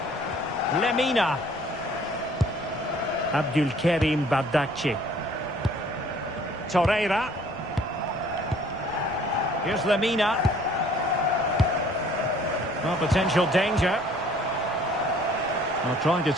Lemina. Abdulkarim Bardakci. Torreira. Here's Lemina. Well, potential danger. Well, trying to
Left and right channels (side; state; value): left; noise; rumble, 23 dB below the sound